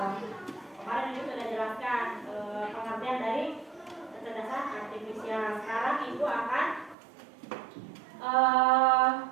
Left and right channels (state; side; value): drops out; left; at 7.0 s